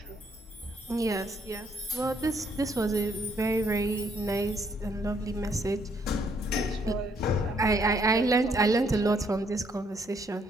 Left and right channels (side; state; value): both; normal; correlation 0.70